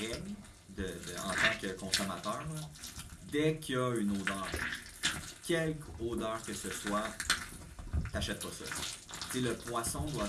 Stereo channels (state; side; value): identical; both; correlation 1.00